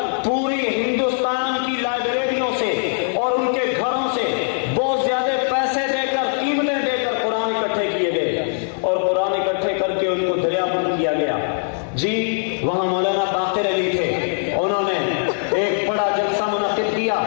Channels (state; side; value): silent; right; digital silence